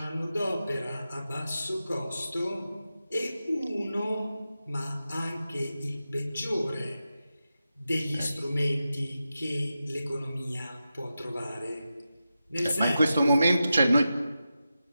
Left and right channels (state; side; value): inverted; both; correlation -0.91